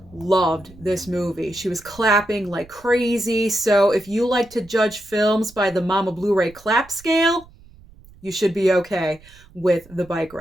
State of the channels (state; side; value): noise; right; rumble, 24 dB below the sound